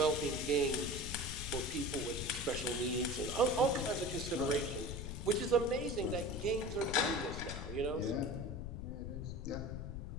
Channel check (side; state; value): left; noise; rumble, 6 dB below the sound